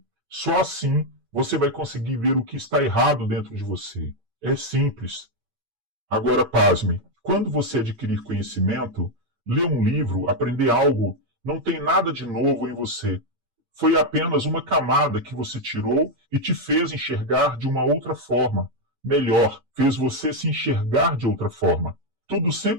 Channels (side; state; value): left; late; 8.6 ms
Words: Só assim você vai conseguir ver o que está errado dentro de você. É simples. Agora, pasme. Quando você adquirir conhecimento, ler um livro, aprender algo, não tem nada de novo em você. Foi apenas uma camada que você tirou e te fez enxergar de uma outra forma. Melhor, fez você se enxergar de outra forma. Tudo